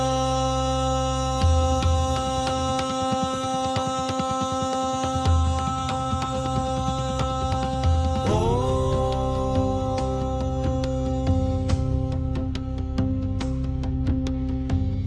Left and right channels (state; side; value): identical; both; correlation 1.00